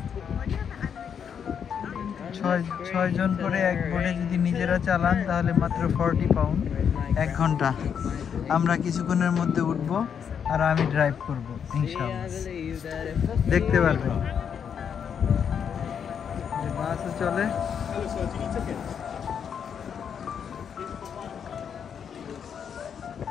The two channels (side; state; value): right; quieter; 7.6 dB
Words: 6 জন করে এক বোটে যদি নিজেরা চালান তাহলে মাত্র 40 পাউন্ড 1 ঘন্টা। আমরা কিছুক্ষণের মধ্যে উঠবো আর আমি ড্রাইভ করব ইনশাআল্লাহ। দেখতে পারবেন বাসও চলে।